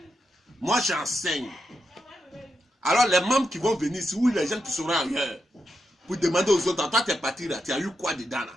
Moi, j'enseigne. Alors, les membres qui vont venir ici, ou les gens qui seront ailleurs, pour demander aux autres, toi, tu es parti là, tu as eu quoi dedans là?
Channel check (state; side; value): normal; both; correlation 0.85